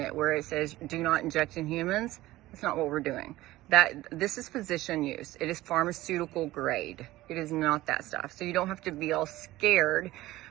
where it says do not inject in humans. That's not what we're doing. This is physician use. It is pharmaceutical grade. It is not that stuff. So you don't have to be all scared.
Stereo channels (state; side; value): quieter; left; 17.0 dB